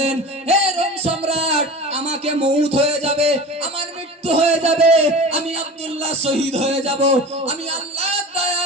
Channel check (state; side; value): normal; both; correlation 0.34